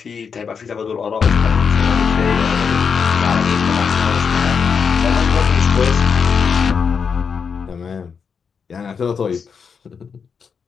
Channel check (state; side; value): quieter; right; 6.1 dB